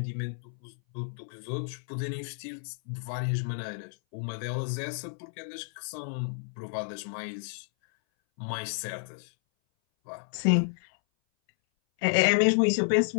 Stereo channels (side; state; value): right; silent; 57 dB below the other